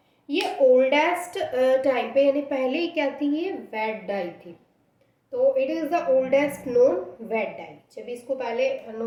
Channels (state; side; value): identical; both; correlation 1.00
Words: ये ओल्डेस्ट टाइम पे, यानी पहले क्या थी, ये वेट डाई थी। तो it is the oldest known vat dye. जब इसको पहले